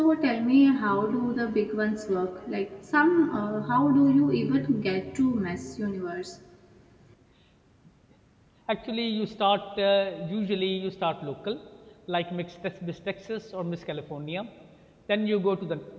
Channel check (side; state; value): both; identical; correlation 1.00